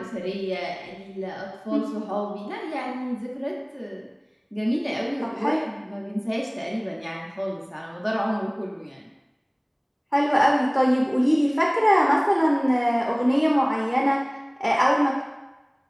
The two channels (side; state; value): both; identical; correlation 1.00